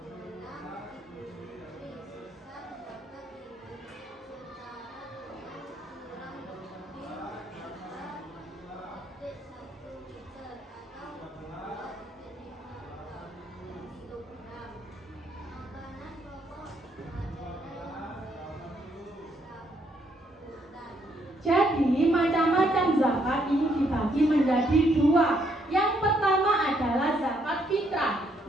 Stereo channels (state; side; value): normal; both; correlation 0.72